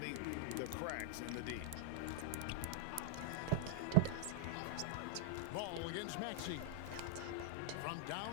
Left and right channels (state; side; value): different; both; correlation 0.00